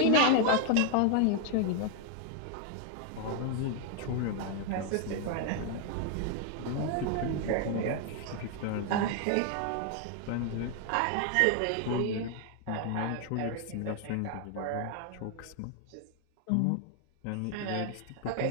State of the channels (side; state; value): both; different; correlation 0.00